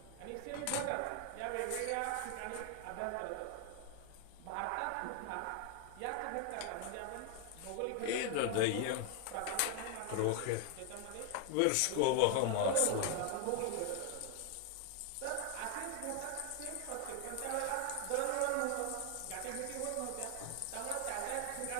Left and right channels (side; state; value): both; different; correlation 0.01